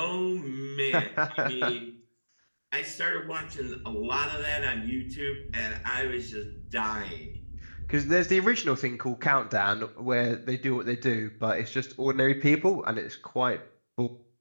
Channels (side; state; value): both; inverted; correlation -1.00